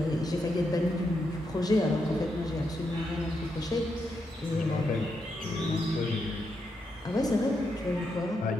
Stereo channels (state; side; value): normal; both; correlation 0.82